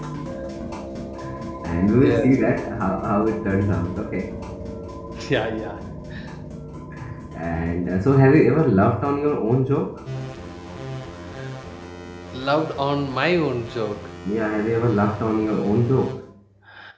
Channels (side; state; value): both; identical; correlation 1.00